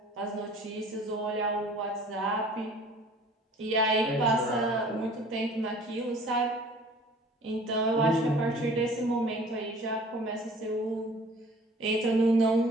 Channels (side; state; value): both; normal; correlation 0.50